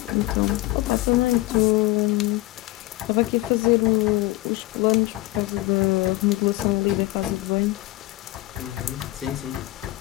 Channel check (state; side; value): quieter; right; 18.9 dB